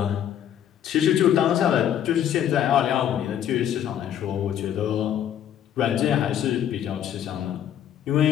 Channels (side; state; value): right; quieter; 10.2 dB